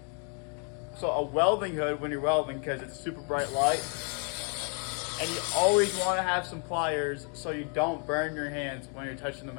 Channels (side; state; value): right; quieter; 39.8 dB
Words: so a welding hood when you're welding because it's super bright light. And you always want to have some pliers so you don't burn your hands when you're touching the